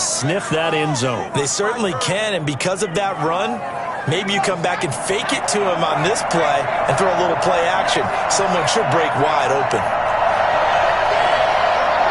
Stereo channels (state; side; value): identical; both; correlation 1.00